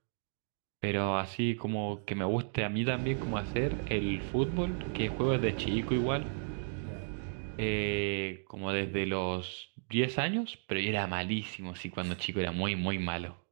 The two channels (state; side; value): silent; left; digital silence